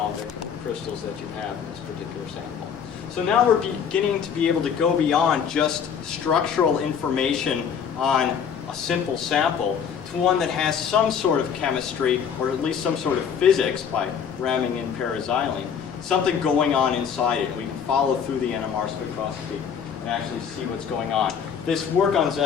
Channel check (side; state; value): right; quieter; 7.4 dB